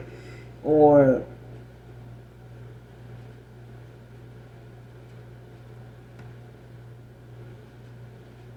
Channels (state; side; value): identical; both; correlation 1.00